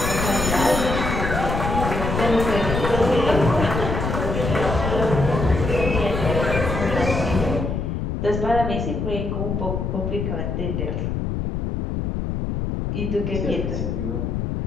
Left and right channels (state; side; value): noise; left; rumble, 2 dB below the sound